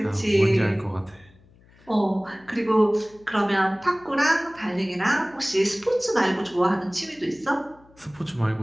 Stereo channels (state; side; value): noise; left; hum, 28 dB below the sound